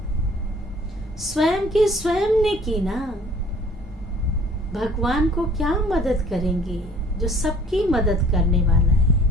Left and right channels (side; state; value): both; normal; correlation 0.53